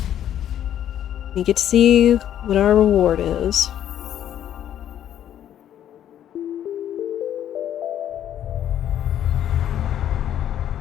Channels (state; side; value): quieter; right; 10.8 dB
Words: we get to see what our reward is.